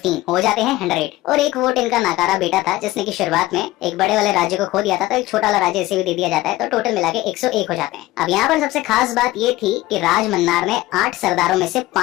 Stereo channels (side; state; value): right; quieter; 17.5 dB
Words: हो जाते हैं 100। और 1 वोट इनका नाकारा बेटा था जिसने की शुरुआत में एक बड़े वाले राज्य को खो दिया था, तो एक छोटा वाला राज्य इसे भी दे दिया जाता है, तो टोटल मिला के 101 हो जाते हैं। अब यहाँ पर सबसे खास बात ये थी कि राज मन्नार ने 8 सरदारों में से